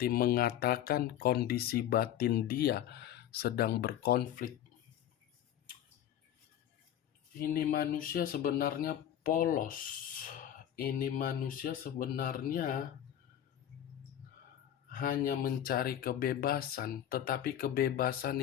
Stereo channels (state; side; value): quieter; right; 10.8 dB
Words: mengatakan kondisi batin dia sedang berkonflik. Ini manusia sebenarnya polos. Ini manusia sebenarnya hanya mencari kebebasan, tetapi kebebasan